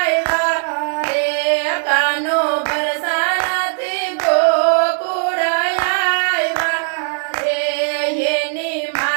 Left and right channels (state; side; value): silent; left; 66 dB below the other